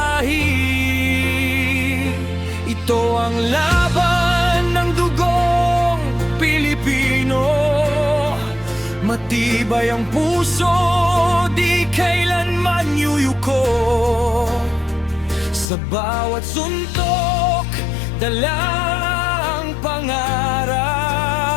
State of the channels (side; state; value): right; drops out; at 15.7 s